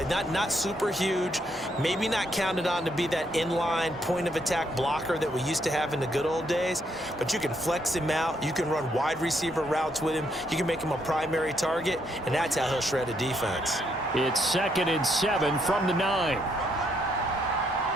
not super huge. Maybe not counted on to be that inline point-of-attack blocker that we used to have in the good old days. But you can flex him out. You can run wide receiver routes with him. You can make him a primary target, and that's how he'll shred a defense. It's 2nd and 7 from the 9.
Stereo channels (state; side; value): normal; both; correlation 0.74